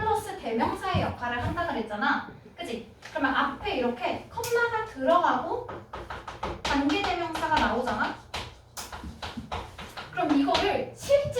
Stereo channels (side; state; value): both; identical; correlation 1.00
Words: 대명사의 역할을 한다 그랬잖아. 그치? 그러면 앞에 이렇게 컴마가 들어가고 관계대명사가 나오잖아. 그럼 이거를